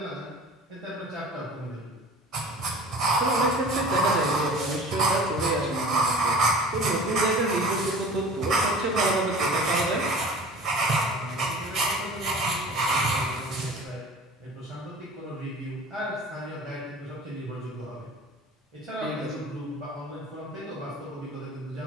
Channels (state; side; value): normal; both; correlation 0.41